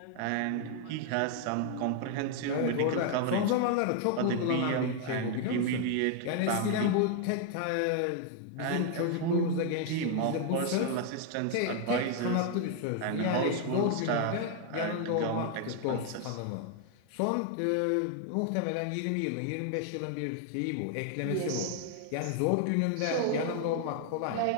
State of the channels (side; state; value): both; different; correlation 0.00